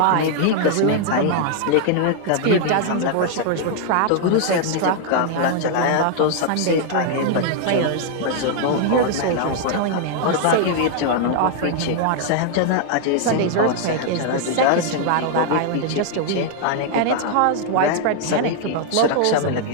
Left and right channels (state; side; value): different; both; correlation 0.00